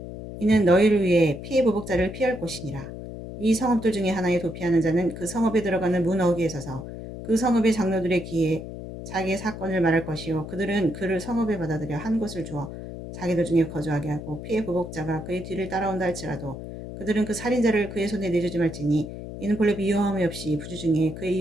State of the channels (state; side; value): noise; left; hum, 10 dB below the sound